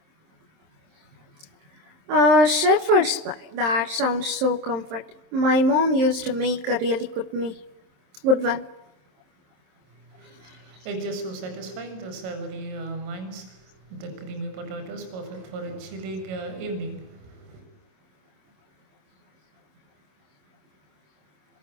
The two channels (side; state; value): left; late; 27 ms